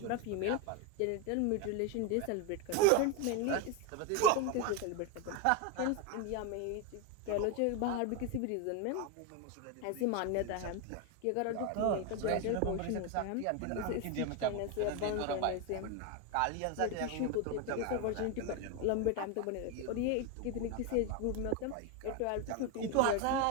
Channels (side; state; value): both; different; correlation 0.02